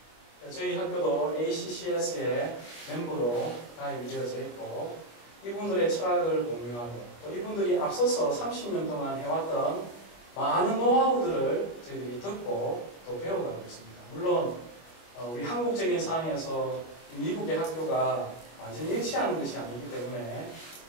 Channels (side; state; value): right; late; 25 ms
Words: 저희 학교도 ACCS의 멤버로 가입이 되어져 있고 이분들의 철학을 공유하고 또 이분들이 앞서서 30년 동안 해왔던 많은 노하우들을 저희들이 듣고 또 배워가고 있습니다. 물론 우리 한국적인 상황에서 미국의 학교가 완전히 일치하는 것이 아니기 때문에